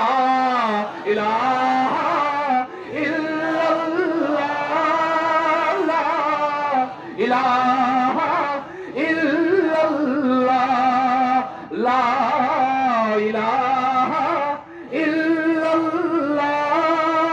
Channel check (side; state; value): both; identical; correlation 1.00